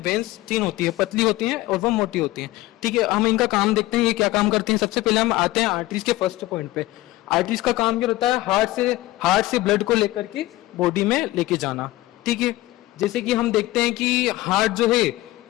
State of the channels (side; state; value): right; quieter; 17.8 dB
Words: वेन्स तीन होती है, पतली होती हैं और वो मोटी होती हैं। ठीक है, हम इनका काम देखते हैं ये क्या काम करते हैं। सबसे पहले हम आते हैं आर्टरीज के फर्स्ट पॉइंट पे। आर्टरीज का काम क्या होता है? हार्ट से ब्लड को लेकर के बॉडी में लेके जाना। ठीक है, जैसे कि हम देखते हैं कि हार्ट जो है